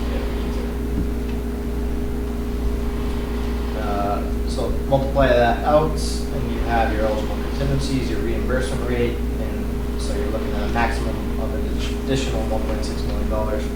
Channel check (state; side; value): identical; both; correlation 1.00